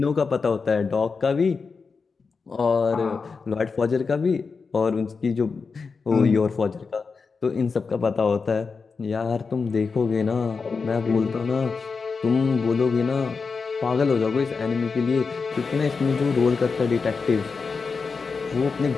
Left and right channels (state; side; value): quieter; right; 4.9 dB